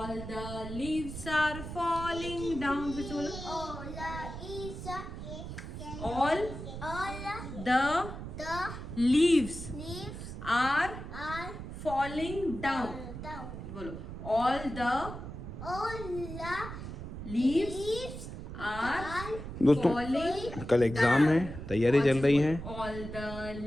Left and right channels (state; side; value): noise; right; rumble, 9 dB below the sound